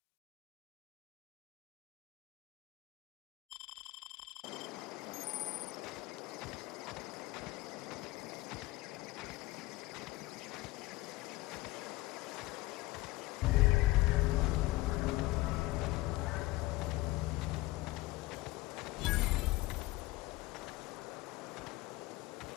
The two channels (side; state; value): right; quieter; 19.3 dB